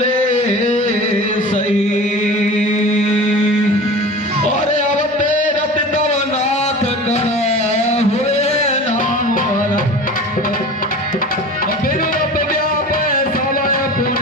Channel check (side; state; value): both; normal; correlation 0.36